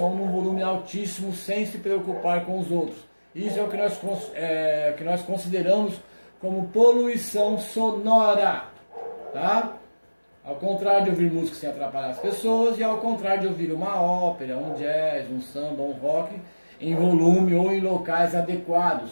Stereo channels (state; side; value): inverted; both; correlation -1.00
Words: num volume altíssimo sem se preocupar com os outros. Isso é o que nós consideramos como poluição sonora, tá? Ao contrário de ouvir música sem atrapalhar as pessoas e ao contrário de ouvir uma ópera, um jazz, um samba, um rock em volume ou em locais adequados.